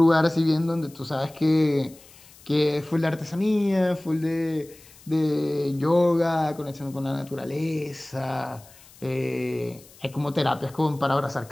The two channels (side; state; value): left; noise; hiss, 24 dB below the sound